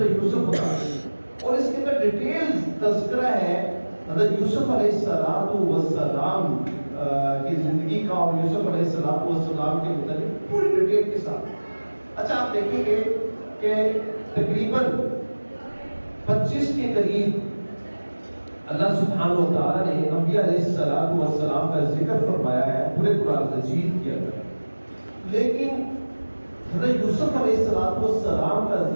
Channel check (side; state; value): both; inverted; correlation -1.00